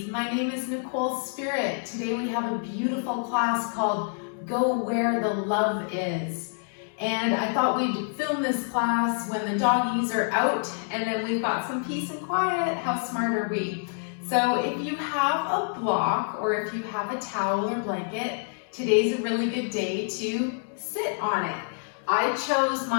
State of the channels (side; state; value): right; silent; 59 dB below the other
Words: My name is Nicole Spirit. Today we have a beautiful class called Go Where the Love Is. And I thought we'd film this class when the doggies are out and then we've got some peace and quiet. How smart are we? So if you have a block or if you have a towel or blanket, today's a really good day to sit on it. I chose